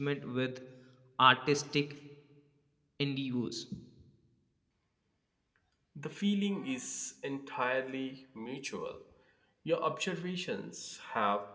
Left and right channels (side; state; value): both; identical; correlation 1.00